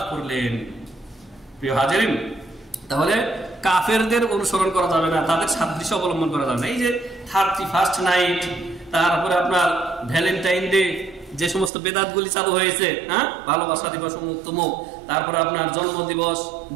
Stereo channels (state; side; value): drops out; left; at 11.7 s